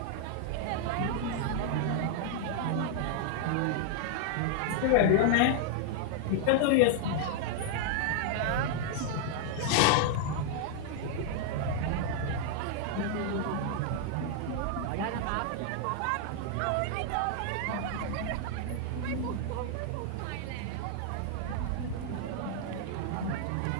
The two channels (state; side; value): different; both; correlation 0.00